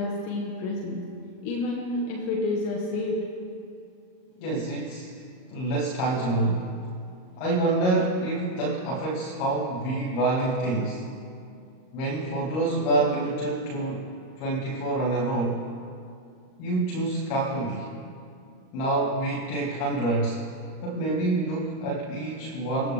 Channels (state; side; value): late; right; 38 ms